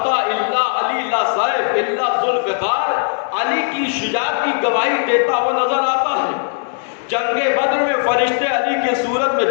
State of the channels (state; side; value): silent; right; digital silence